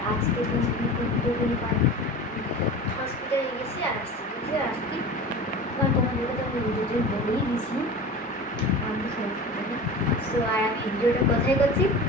আজকে দিন দুপুরে হসপিটালে গেছি আর আসছি কারণ তোমাদেরকে তো আমি ভিডিওতে বলেই দিয়েছি আমি হসপিটালে। সো আর আমি ভিডিওটা কোথায় করছি?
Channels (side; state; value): both; normal; correlation 0.34